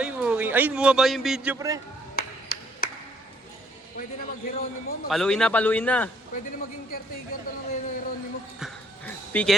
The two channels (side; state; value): both; normal; correlation 0.65